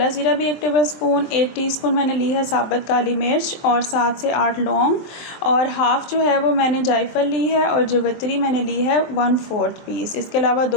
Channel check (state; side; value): late; right; 23 ms